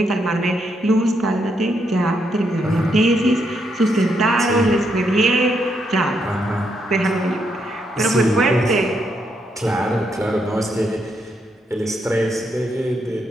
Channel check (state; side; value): normal; both; correlation 0.78